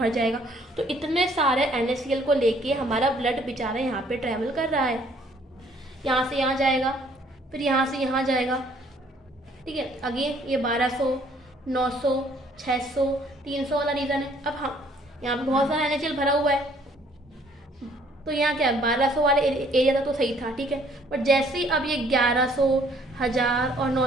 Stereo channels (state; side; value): normal; both; correlation 0.61